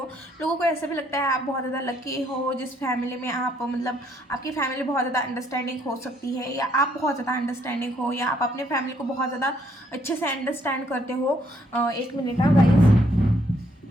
लोगों को ऐसा भी लगता है आप बहुत ज़्यादा लकी हो जिस फैमिली में आप मतलब आपकी फैमिली बहुत ज़्यादा अंडरस्टैंडिंग हो सकती है, या आप बहुत ज़्यादा अंडरस्टैंडिंग हो, या आप अपने फैमिली को बहुत ज़्यादा अच्छे से अंडरस्टैंड करते हो। 1 मिनट गाइस।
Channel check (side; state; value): both; normal; correlation 0.69